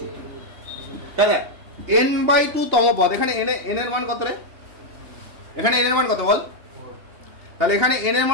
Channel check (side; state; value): left; late; 2.8 ms